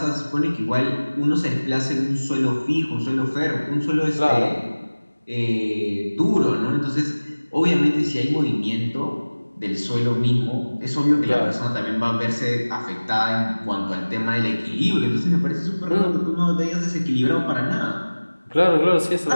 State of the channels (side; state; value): both; inverted; correlation -1.00